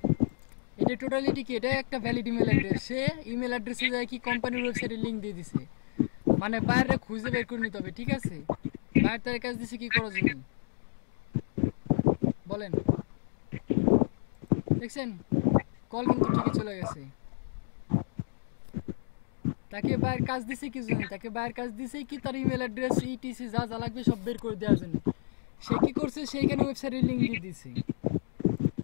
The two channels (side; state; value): right; silent; digital silence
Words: এটা টোটালিটি কি? এটা একটা ভ্যালিড ইমেল অ্যাড্রেস। সে ইমেল অ্যাড্রেসে যায় কি কোম্পানির ওয়েবসাইটে লিংক দিয়ে দিছে, মানে বাইরে খুঁজে বের করে নিতে হবে, ঠিক আছে? বাইরে তার কাজ দিছে কি করার জন্য বলেন? দেখছেন কল কিন্তু ঠিকই চলে গেছে। তাকে বাইরের কাজ দিছে কি জন্য? তাকে বাইরের কাজ দিছে কি তার ইমেল অ্যাড্রেস ইটিসি যা যা লাগবে সব বের করে দেওয়ার জন্য। সে কি করছে? সেইখানে ওয়েবসাইটের লিংক দিয়ে দিছে।